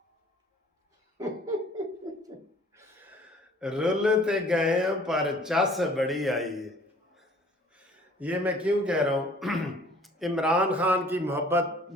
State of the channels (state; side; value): normal; both; correlation 0.54